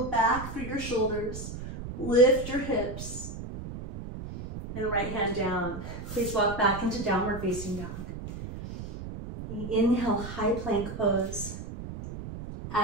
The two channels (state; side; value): noise; right; rumble, 9 dB below the sound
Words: back through your shoulders, lift your hips, and right hand down. Please walk back into downward facing dog. Inhale, high plank pose.